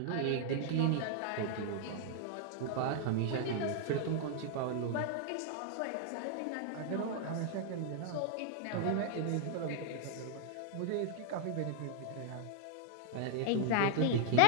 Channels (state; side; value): different; both; correlation 0.00